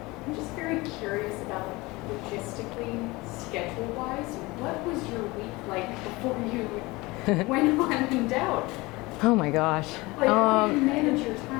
I'm just very curious about logistically, schedule-wise, what was your week like before you went on in doubt? Oh my gosh. Like, how do you manage your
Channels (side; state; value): right; quieter; 22.4 dB